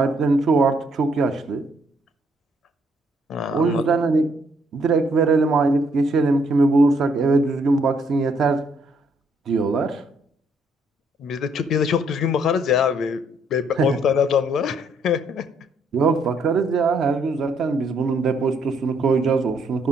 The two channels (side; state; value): both; normal; correlation 0.69